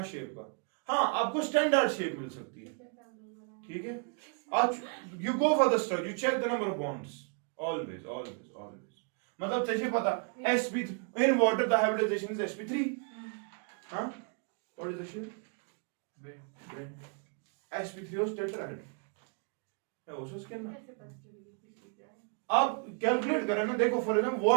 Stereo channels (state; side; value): quieter; left; 39.2 dB